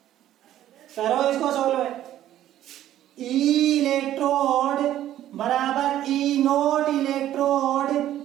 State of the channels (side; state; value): left; quieter; 12.5 dB